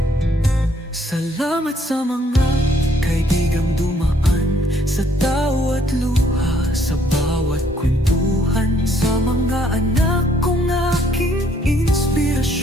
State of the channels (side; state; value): both; normal; correlation 0.66